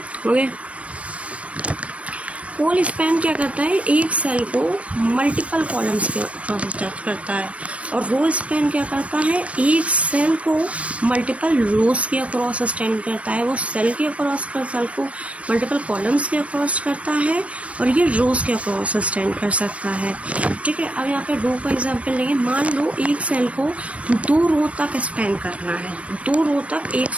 हो गया। कॉल स्पैन क्या करता है, एक सेल को मल्टीपल कॉलम्स के अक्रॉस स्ट्रेच करता है, और रो स्पैन क्या करता है, एक सेल को मल्टीपल रोज के अक्रॉस स्टैंड करता है। वो सेल के अक्रॉस कर सेल को मल्टीपल कॉलम्स के अक्रॉस करता है, और ये रोज के अक्रॉस स्टैंड कर सकता है। ठीक है, अब यहाँ पे रो का एग्जांपल लेंगे। मान लो एक सेल को 2 रो तक स्पैन करना है, 2 रो तक एक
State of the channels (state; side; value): late; left; 0.064 ms